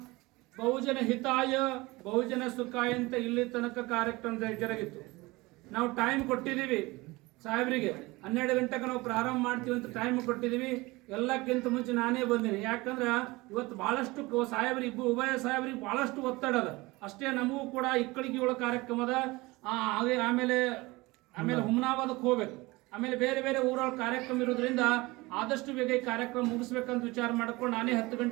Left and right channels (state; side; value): quieter; left; 22.2 dB